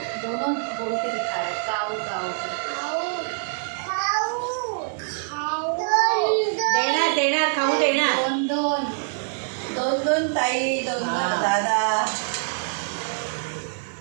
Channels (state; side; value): silent; left; digital silence